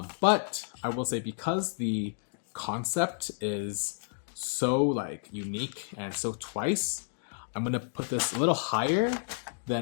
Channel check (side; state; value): right; silent; digital silence